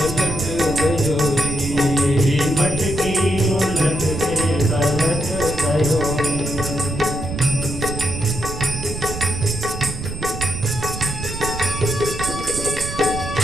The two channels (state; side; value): noise; right; rumble, 7 dB below the sound